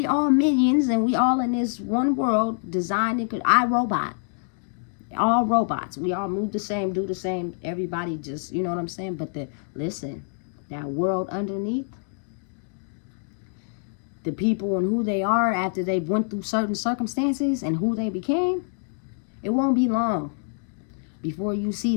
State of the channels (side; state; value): right; silent; 61 dB below the other